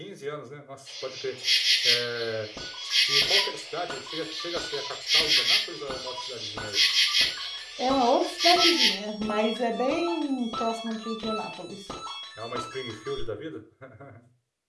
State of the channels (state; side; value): identical; both; correlation 1.00